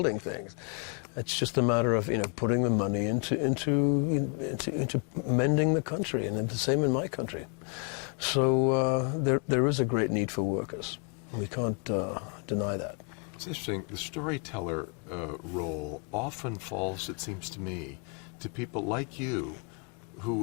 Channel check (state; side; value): quieter; right; 38.0 dB